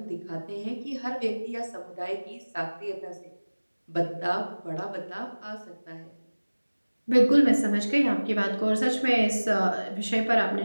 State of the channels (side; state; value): both; inverted; correlation -1.00